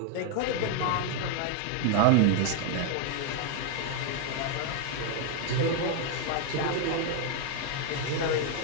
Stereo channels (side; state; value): both; different; correlation 0.01